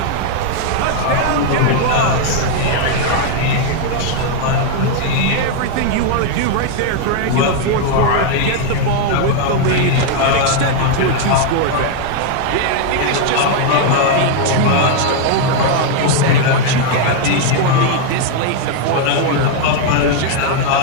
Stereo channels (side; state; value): both; different; correlation 0.00